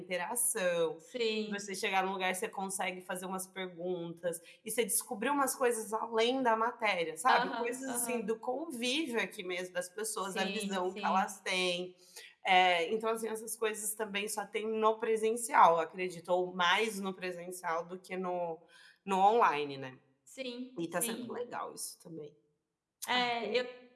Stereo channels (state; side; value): identical; both; correlation 1.00